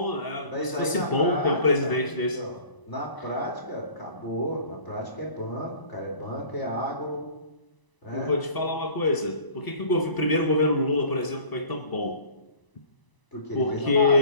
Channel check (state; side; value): late; right; 1.0 ms